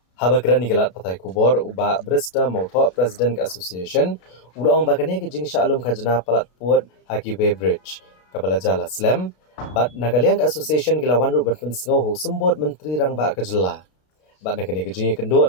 Haba keran nigalat patai kubor uba Brista Motho President ka Association ulang bagane gajing syalum khajna palat puat haki Weybridge. Kabala jala slam Bat Nagaliang Association Gilawan Ruban Pensngo ho sembut menteri rang ba kejela. Bat nakene kejing kendo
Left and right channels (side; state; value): right; late; 33 ms